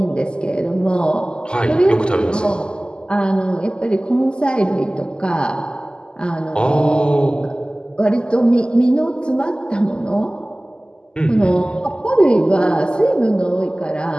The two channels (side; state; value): right; late; 0.048 ms